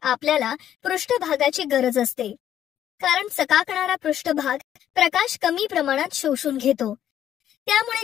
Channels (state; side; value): quieter; right; 10.8 dB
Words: आपल्याला पृष्ठभागाची गरज असते. कारण चकाकणारा पृष्ठभाग प्रकाश कमी प्रमाणात शोषून घेतो.